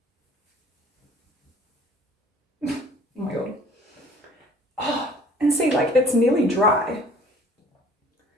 oh my god. Oh, and see, like it's nearly dry.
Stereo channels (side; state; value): both; normal; correlation 0.52